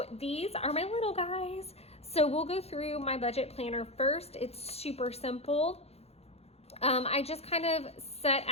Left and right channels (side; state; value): right; late; 0.30 ms